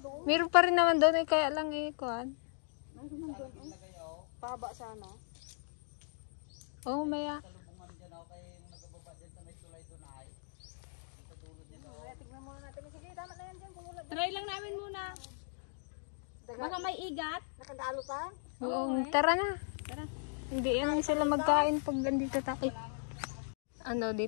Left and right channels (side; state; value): right; silent; digital silence